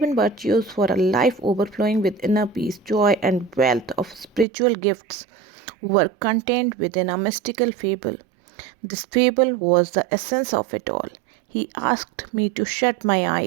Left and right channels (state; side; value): drops out; left; at 4.5 s